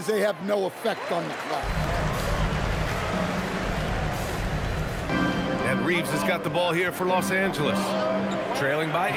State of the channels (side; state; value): both; identical; correlation 1.00